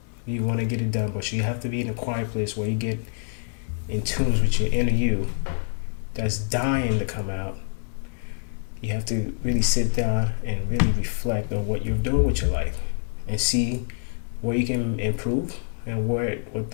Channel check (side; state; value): right; silent; digital silence